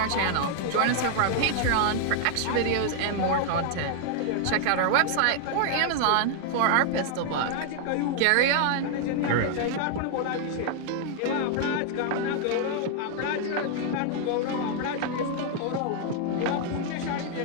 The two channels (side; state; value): both; different; correlation 0.00